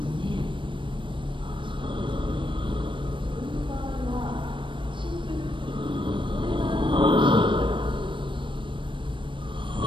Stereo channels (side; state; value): left; late; 0.24 ms